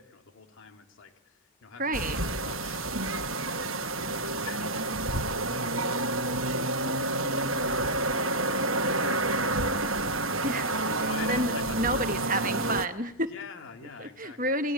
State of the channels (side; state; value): both; normal; correlation -0.04